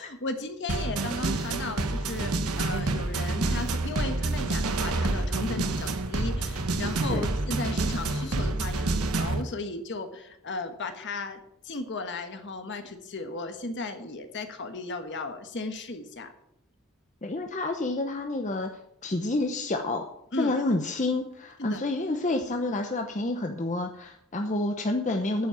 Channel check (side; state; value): both; normal; correlation 0.54